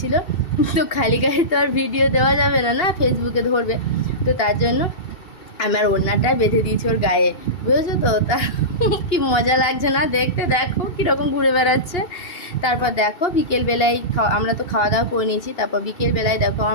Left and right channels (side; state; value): right; late; 2.7 ms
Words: তো খালি গায়ে তো আর ভিডিও দেওয়া যাবে না, না ফেসবুকে ধরবে। তো তার জন্য আমার ওড়নাটা বেঁধে দিয়েছি ওর গায়ে, বুঝেছো তো? তা কি মজা লাগছে না দেখতে, দেখো কীরকম ঘুরে বেড়াচ্ছে। তারপর দেখো বিকেলবেলায় আমরা তো খাওয়া দাওয়া করে নিয়েছি। তারপর বিকেলবেলায় দেখো